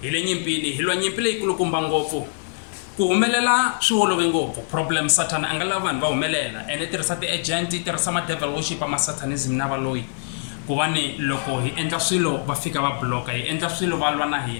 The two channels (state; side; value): silent; right; digital silence